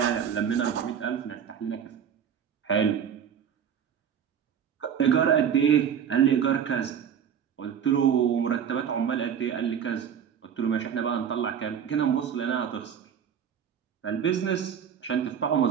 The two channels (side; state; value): left; quieter; 8.2 dB